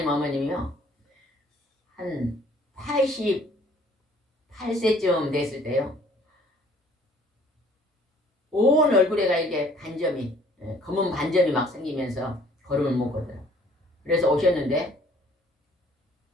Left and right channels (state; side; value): normal; both; correlation 0.58